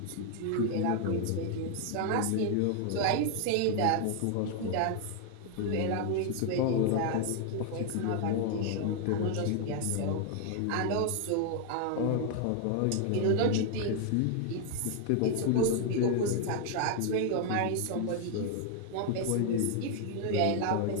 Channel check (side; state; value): both; different; correlation 0.00